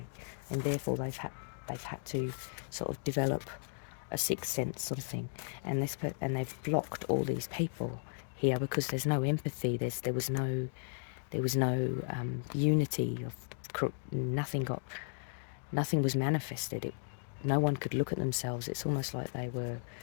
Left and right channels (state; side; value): silent; right; digital silence